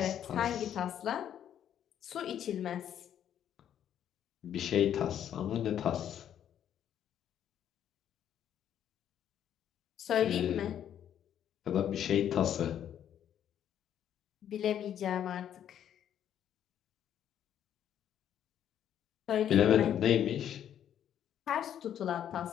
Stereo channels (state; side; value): quieter; right; 10.0 dB